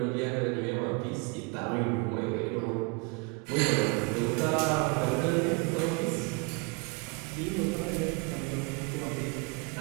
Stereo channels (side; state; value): left; quieter; 29.7 dB